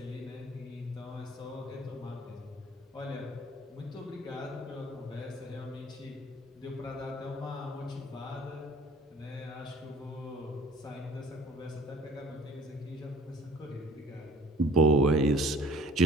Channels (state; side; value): normal; both; correlation 0.51